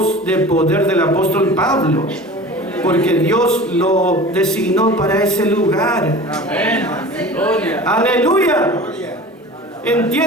de poder del apóstol Pablo, porque Dios lo designó para ese lugar. Amén. Aleluya.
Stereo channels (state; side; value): normal; both; correlation 0.38